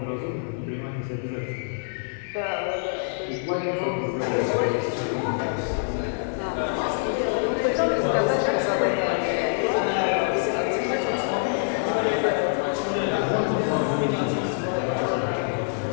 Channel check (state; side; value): silent; right; digital silence